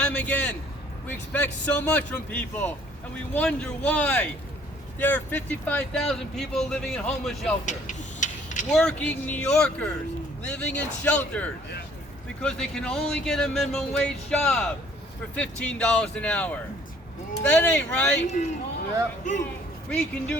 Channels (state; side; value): normal; both; correlation 0.59